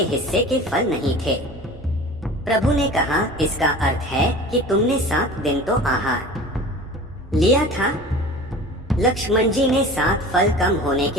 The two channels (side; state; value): both; normal; correlation 0.39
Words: हिस्से के फल नहीं थे। प्रभु ने कहा, इसका अर्थ है कि तुमने 7 दिन तो आहार लिया था। लक्ष्मण जी ने 7 फल कम होने